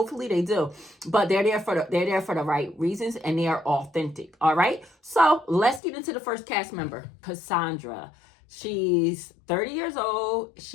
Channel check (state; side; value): drops out; right; at 5.8 s